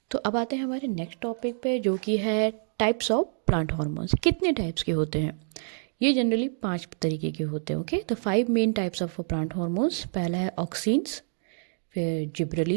तो अब आते हैं हमारे नेक्स्ट टॉपिक पे जो कि है टाइप्स ऑफ प्लांट हार्मोन्स। कितने टाइप्स के होते हैं? ये जनरली 5 तरीके के होते हैं। ओके, तो 5 main types of plant hormones. पहला है ऑक्सिन्स, फिर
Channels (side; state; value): left; silent; digital silence